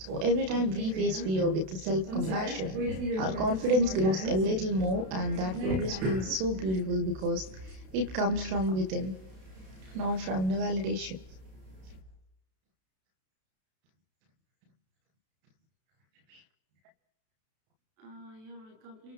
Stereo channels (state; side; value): late; left; 32 ms